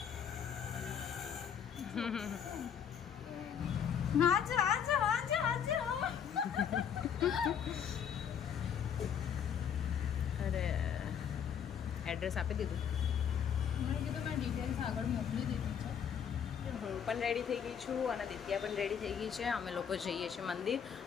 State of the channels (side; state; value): right; quieter; 8.0 dB